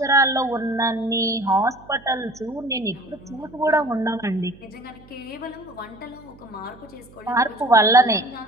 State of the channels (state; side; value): noise; right; hum, 24 dB below the sound